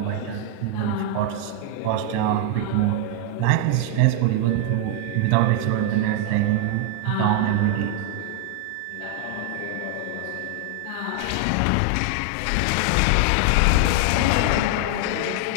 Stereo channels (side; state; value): both; different; correlation 0.00